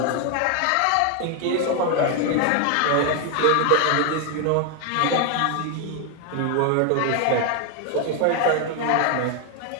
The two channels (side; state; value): both; different; correlation 0.01